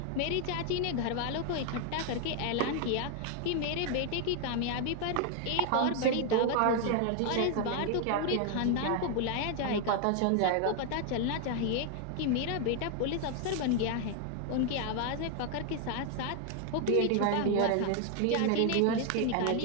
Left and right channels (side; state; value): both; different; correlation 0.00